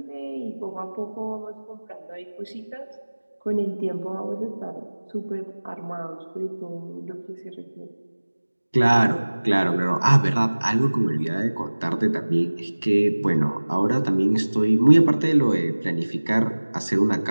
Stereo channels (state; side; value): inverted; both; correlation -1.00